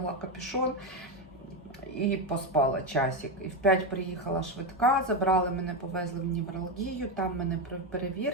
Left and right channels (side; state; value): both; normal; correlation 0.10